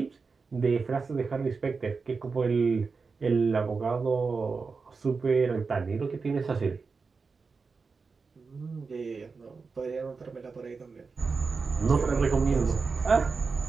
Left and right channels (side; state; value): left; quieter; 4.7 dB